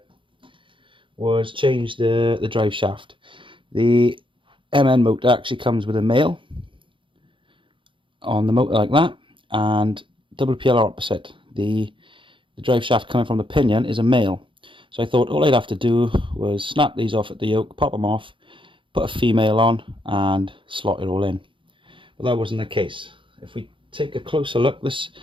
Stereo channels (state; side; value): late; left; 0.25 ms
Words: was change the drive shaft. The MN motor actually comes with a male on the motor like that, and WPL opposite. The drive shaft coming from the pinion is a male. So I thought all I'd have to do was snap these off at the yoke, pop them off, put a female on and slot it all in. But that wasn't the case. If we take a closer look, this